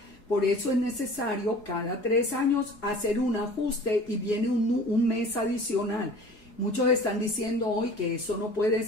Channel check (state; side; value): late; right; 4.7 ms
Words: Por eso es necesario cada 3 años hacer un ajuste y viene un mes adicional. Muchos están diciendo hoy que eso no puede